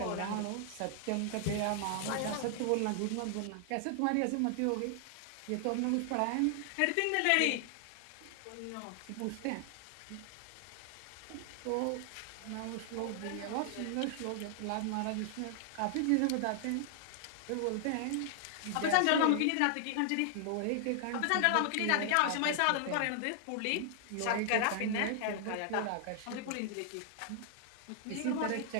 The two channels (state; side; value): different; both; correlation 0.00